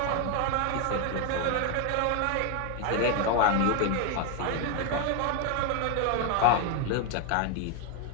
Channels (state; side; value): different; both; correlation 0.01